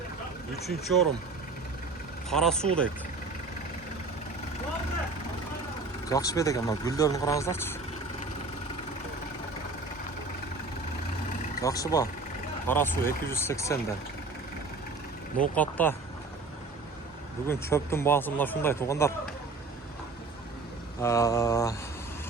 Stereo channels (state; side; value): quieter; left; 3.7 dB